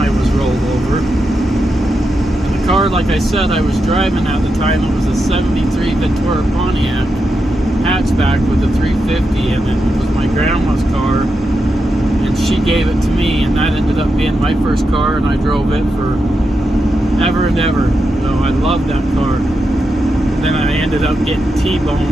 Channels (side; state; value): both; normal; correlation 0.86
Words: was rolled over. And the car, like I said, I was driving at the time, it was a 73 Ventura Pontiac hatchback with a 350, and it was my grandma's car, and she gave it to me, and that ended up being my first car, and I drove it for ever and ever. So I loved that car. And then I ended up getting